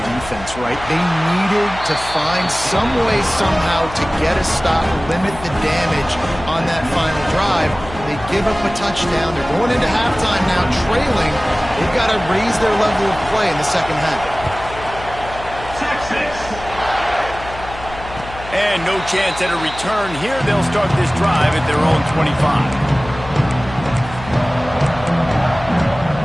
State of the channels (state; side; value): noise; left; hum, 13 dB below the sound